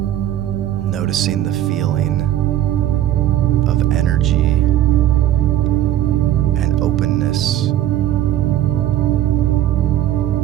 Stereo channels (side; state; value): left; quieter; 12.3 dB